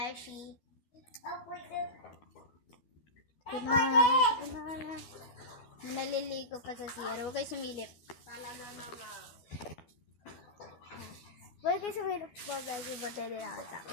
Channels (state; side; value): late; right; 12 ms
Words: Kunana. Naliligo pa sa CR. Huwag kayo sumilip. Talaga naman. Huwag kayo sumilip mga beshi. Bante din nakita.